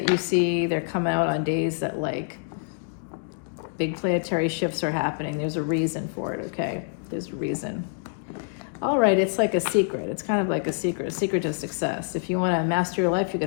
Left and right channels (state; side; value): silent; right; digital silence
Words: you see, they're coming out on days that like big planetary shifts are happening. There's a reason for it, okay? There's a reason. All right, it's like a secret. It's kind of like a secret to success. If you want to master your life, you're